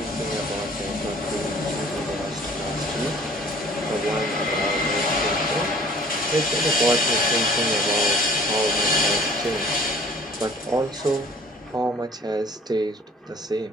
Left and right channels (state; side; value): normal; both; correlation 0.51